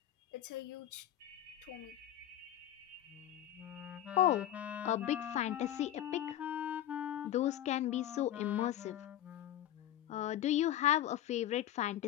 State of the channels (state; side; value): quieter; right; 12.0 dB